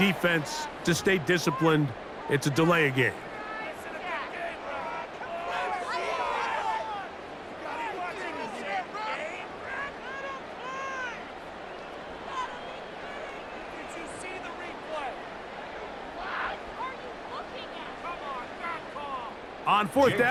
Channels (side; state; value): both; identical; correlation 1.00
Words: to stay disciplined. It's a delay of game. On fourth